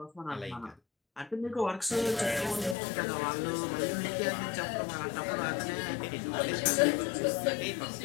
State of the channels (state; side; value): drops out; right; at 2.8 s